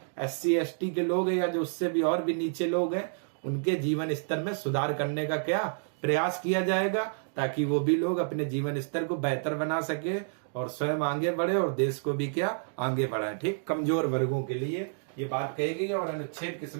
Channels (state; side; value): silent; left; digital silence